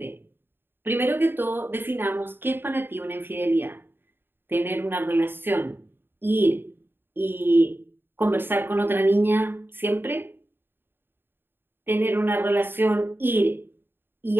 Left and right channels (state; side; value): late; left; 0.10 ms